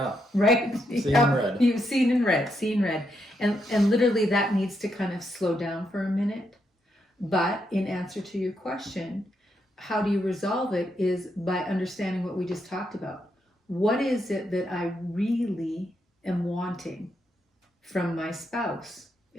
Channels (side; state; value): both; normal; correlation 0.80